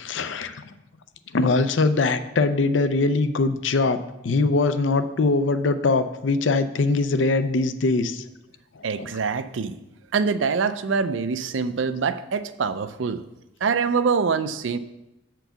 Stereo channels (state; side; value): normal; both; correlation 0.16